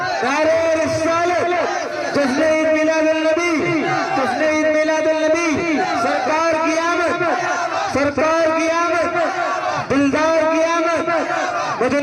نعرہ رسالت جشن عید میلاد النبی جشن عید میلاد النبی سرکار کی آمد سرکار کی آمد دلدار کی آمد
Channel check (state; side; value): identical; both; correlation 1.00